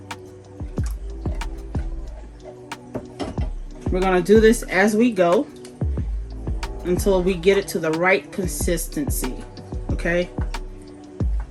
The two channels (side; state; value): both; identical; correlation 1.00